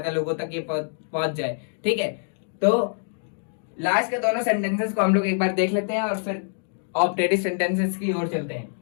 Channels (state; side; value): silent; right; digital silence